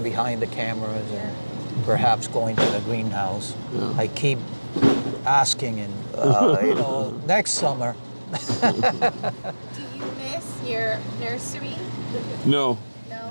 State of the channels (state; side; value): inverted; both; correlation -1.00